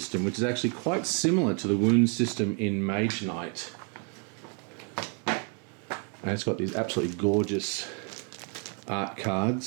which is actually quite similar to the wound system in Mage Knight. And it's got these absolutely gorgeous art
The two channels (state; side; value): quieter; left; 38.8 dB